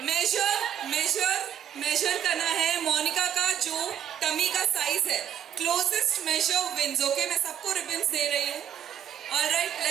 मेजर करना है मोनिका का जो टमी का साइज है। Closest measure wins, okay? मैं सबको रिबन्स दे रही हूँ। ऑलराइट,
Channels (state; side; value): quieter; left; 9.9 dB